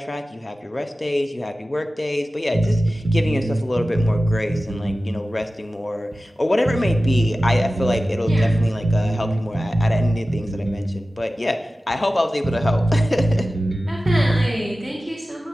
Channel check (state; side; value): normal; both; correlation 0.95